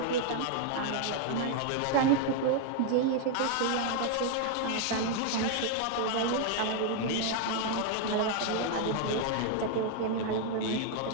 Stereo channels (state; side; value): different; both; correlation 0.00